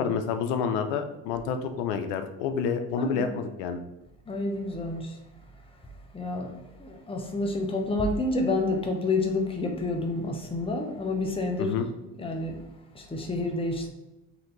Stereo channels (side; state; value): right; quieter; 3.3 dB